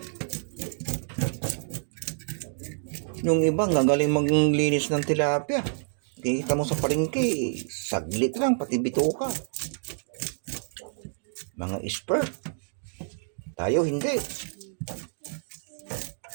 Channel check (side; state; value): left; silent; digital silence